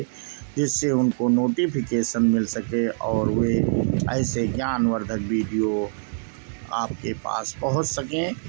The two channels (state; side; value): silent; left; digital silence